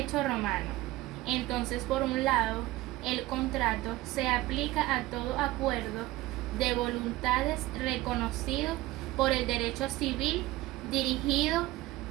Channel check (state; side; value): quieter; left; 17.8 dB